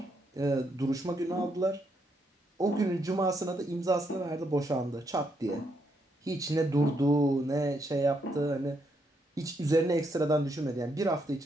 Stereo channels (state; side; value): normal; both; correlation 0.77